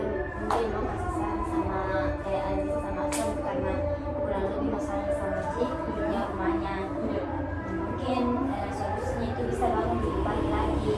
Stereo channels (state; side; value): identical; both; correlation 1.00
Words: mungkin mau kasih saran sama kayak Aziz sama Asam karena kurang lebih masalahnya sama sih punya rumahnya. Iya. Mungkin solusinya itu bisa bangun lebih pagi lagi